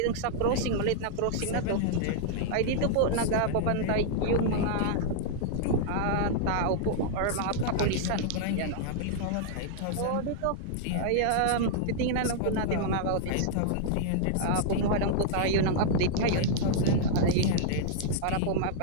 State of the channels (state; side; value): different; both; correlation -0.01